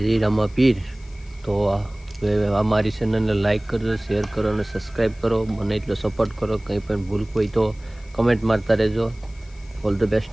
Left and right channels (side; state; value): left; noise; hiss, 28 dB below the sound